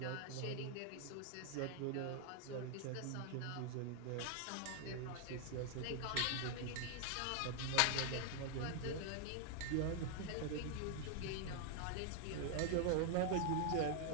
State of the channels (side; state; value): both; different; correlation 0.00